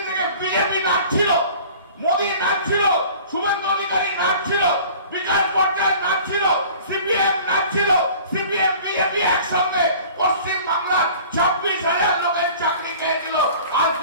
থেকে। বিজেপি নাচছিল, মোদী নাচছিল, শুভেন্দু অধিকারী নাচছিল, বিকাশ ভট্টাচার্য নাচছিল, সিপিএম নাচছিল, সিপিএম বিজেপি একসঙ্গে পশ্চিম বাংলার 26,000 লোকের চাকরি খেয়েছিল। আজ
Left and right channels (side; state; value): both; inverted; correlation -0.45